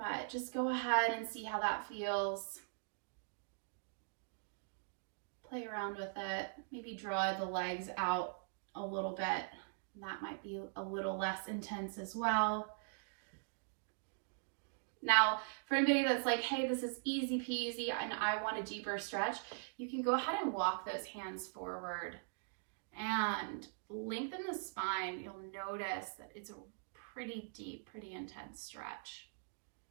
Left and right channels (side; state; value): left; silent; digital silence